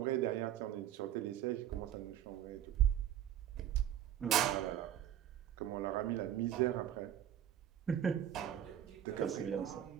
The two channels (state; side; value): quieter; left; 10.7 dB